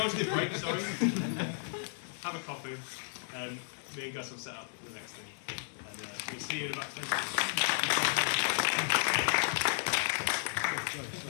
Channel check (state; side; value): silent; right; 55 dB below the other